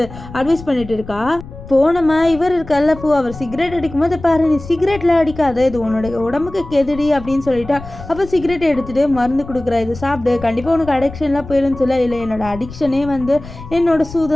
அட்வைஸ் பண்ணிட்டு இருக்கா. போனோமா இவர் இருக்கல்ல அவர் சிகரெட் அடிக்கும் போது பாரு, நீ சிகரெட்ல அடிக்காத, இது உன்னோட உடம்புக்கு கெதுடி அப்படின்னு சொல்லிட்டா. அப்போ சிகரெட் எடுத்துட்டு மருந்து கொடுக்குறா, இது சாப்பிடு, கண்டிப்பாக உனக்கு அடிக்ஷன்லாம் போயிடும்னு சொல்ல, இல்லை என்னோட அடிக்ஷனே வந்து என்னோட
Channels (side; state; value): left; noise; rumble, 15 dB below the sound